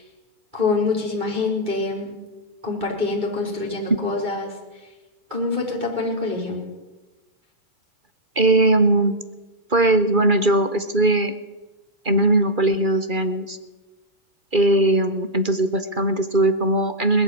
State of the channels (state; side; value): late; left; 2.4 ms